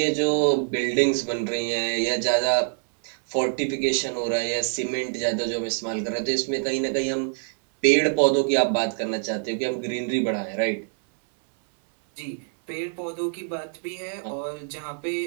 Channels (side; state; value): left; silent; 62 dB below the other